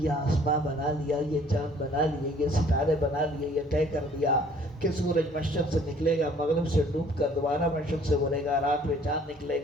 یہ آسمان بنا لیا، یہ چاند بنا لیے، یہ ستارے بنا لیے، یہ طے کر دیا کہ سورج مشرق سے نکلے گا، مغرب سے ڈوب کر دوبارہ مشرق سے بولے گا، رات میں چاند نکلے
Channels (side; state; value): both; normal; correlation 0.57